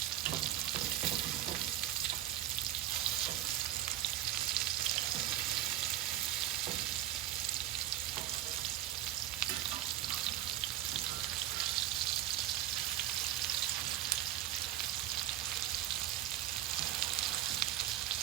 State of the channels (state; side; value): quieter; left; 12.7 dB